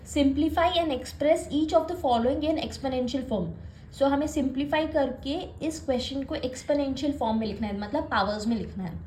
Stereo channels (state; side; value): identical; both; correlation 1.00